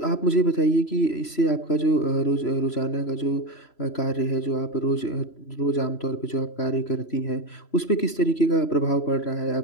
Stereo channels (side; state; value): right; late; 3.0 ms